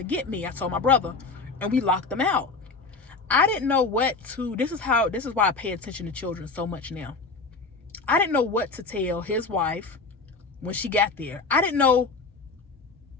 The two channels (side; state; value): right; quieter; 4.1 dB